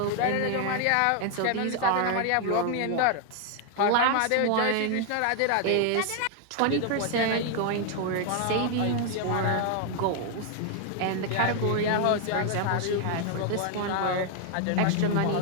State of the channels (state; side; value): different; both; correlation 0.00